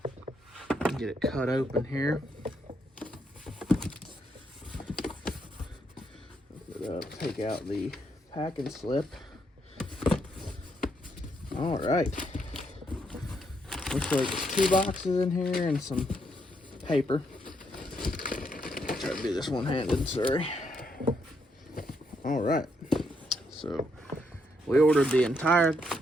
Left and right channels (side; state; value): both; normal; correlation 0.76